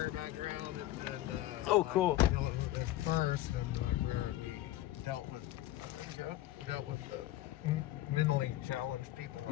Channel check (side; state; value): right; quieter; 14.7 dB